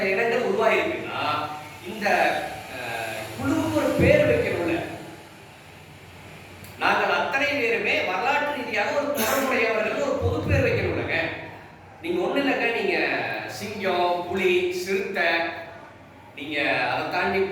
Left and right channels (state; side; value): identical; both; correlation 1.00